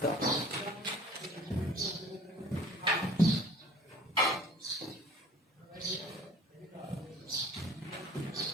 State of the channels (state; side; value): normal; both; correlation 0.49